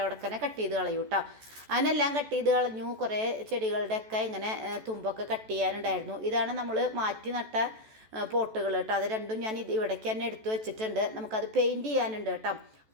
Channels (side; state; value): left; late; 14 ms